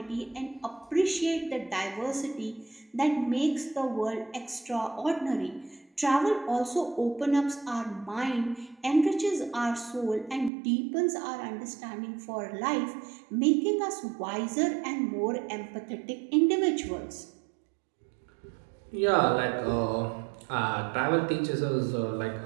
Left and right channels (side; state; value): left; drops out; at 10.5 s